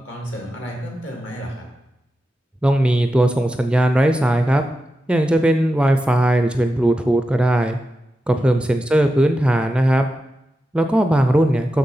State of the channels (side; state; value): both; normal; correlation 0.90